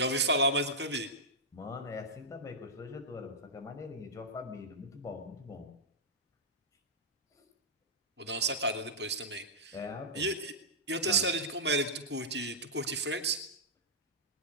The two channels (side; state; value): both; normal; correlation -0.12